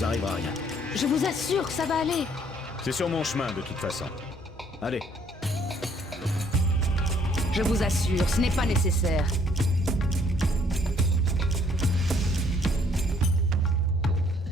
arrivera rien. Je vous assure que ça va aller. C'est sur mon chemin, de toute façon. Allez. Je vous assure, ce n'est pas nécessaire.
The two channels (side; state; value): both; normal; correlation 0.63